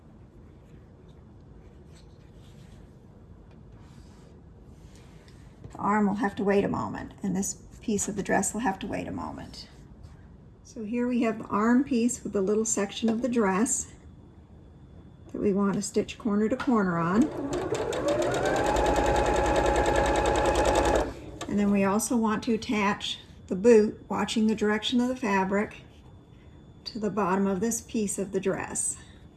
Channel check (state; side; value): identical; both; correlation 1.00